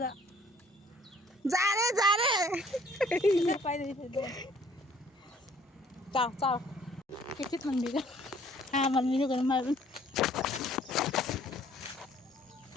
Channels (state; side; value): normal; both; correlation 0.58